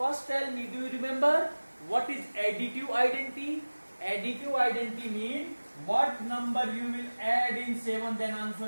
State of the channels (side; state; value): both; inverted; correlation -1.00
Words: tell me, do you remember what is additive identity? Additive identity means what number you will add in 7, then